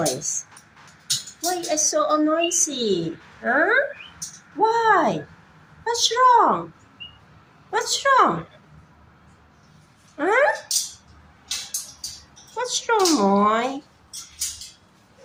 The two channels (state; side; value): identical; both; correlation 1.00